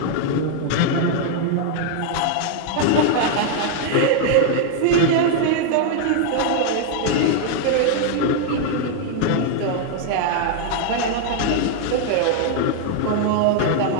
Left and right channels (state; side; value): different; both; correlation 0.00